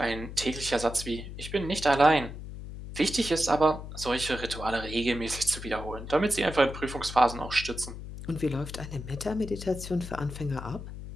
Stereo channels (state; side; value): noise; left; hum, 10 dB below the sound